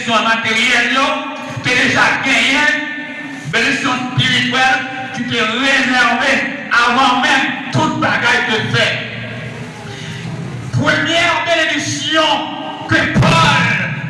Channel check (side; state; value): both; identical; correlation 1.00